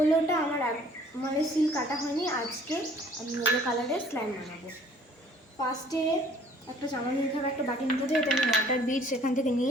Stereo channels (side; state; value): both; normal; correlation 0.55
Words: আমার মানে সিল কাটা হয়নি, আজকে আমি ইয়েলো কালারের স্ল্যাম বানাবো। ফার্স্টে একটা চামচ নিতে হবে, একটা বাটি নিতে হবে, এটা আমি ওয়াটার বিটস এখান থেকে